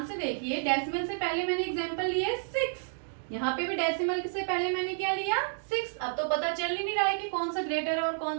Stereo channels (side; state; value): left; silent; digital silence